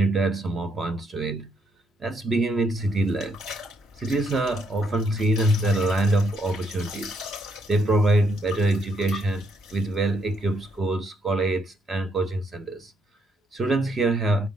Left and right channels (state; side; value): normal; both; correlation 0.73